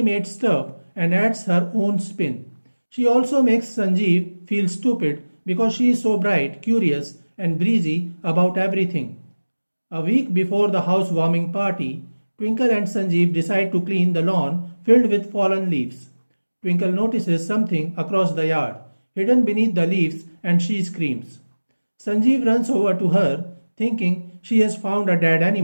stuff and adds her own spin. She also makes Sanjeev feel stupid because she is so bright, curious, and breezy about everything. A week before the housewarming party, Twinkle and Sanjeev decide to clean the lawn filled with fallen leaves. Twinkle notices something across the yard, hidden beneath the leaves, and she screams. Sanjeev runs over to her, thinking she has found a dead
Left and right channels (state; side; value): inverted; both; correlation -1.00